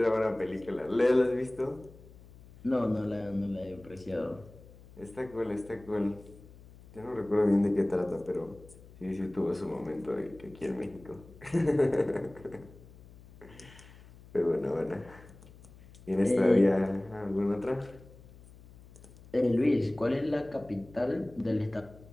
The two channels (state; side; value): noise; left; hum, 21 dB below the sound